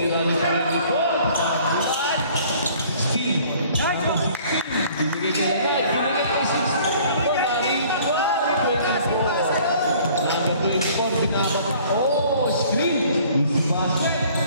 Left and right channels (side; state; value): both; inverted; correlation -0.54